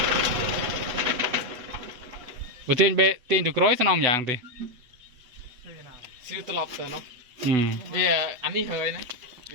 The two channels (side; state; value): left; late; 8.0 ms